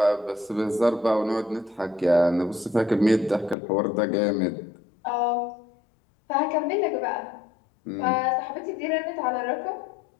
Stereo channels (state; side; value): drops out; right; at 3.6 s